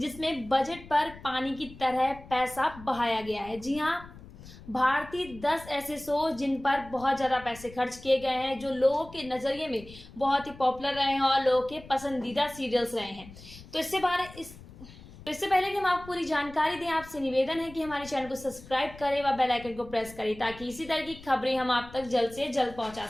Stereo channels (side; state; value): left; noise; rumble, 18 dB below the sound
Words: बजट पर पानी की तरह पैसा बहाया गया है। जी हाँ, भारतीय 10 ऐसे शो जिन पर बहुत ज़्यादा पैसे खर्च किए गए हैं, जो लोगों के नज़रिए में बहुत ही पॉपुलर रहे हैं और लोगों के पसंदीदा सीरियल्स रहे हैं। तो इससे पहले कि हम आपको पूरी जानकारी दें, आपसे निवेदन है कि हमारे चैनल को सब्सक्राइब करें व बेल आइकन को प्रेस करें ताकि इसी तरह की खबरें हम आप तक जल्द से जल्द पहुंचा